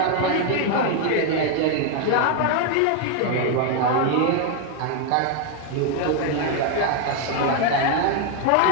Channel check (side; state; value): both; different; correlation 0.01